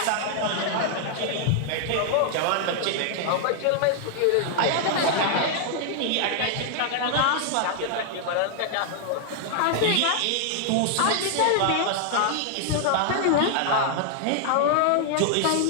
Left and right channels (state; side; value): different; both; correlation 0.00